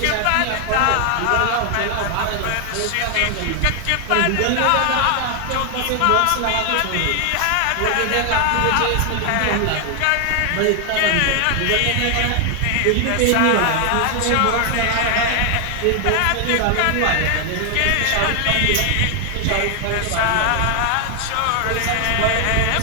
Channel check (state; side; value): different; both; correlation 0.00